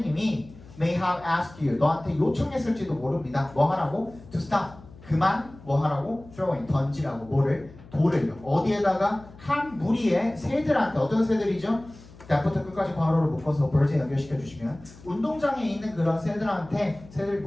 may have asked you, 너한테 요청했을지도 모릅니다. 뭐 하라고? To stop, 그만 뭐 하라고? throwing, 던지라고 뭐를? 돌을요. 어디에다가? 한 무리의 새들한테, 어떤 새들이죠? that부터 끝까지 괄호를 묶어서 birds에 연결시켜 주시면 운동장에 있는 그런 새들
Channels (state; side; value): noise; left; hum, 21 dB below the sound